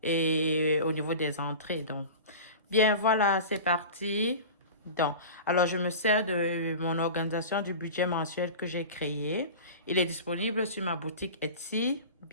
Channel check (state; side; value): inverted; both; correlation -0.34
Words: et au niveau des entrées. Donc bien voilà, c'est parti. Donc, alors je me sers de mon organisation du budget mensuel que j'ai créé. Il est disponible sur ma boutique Etsy.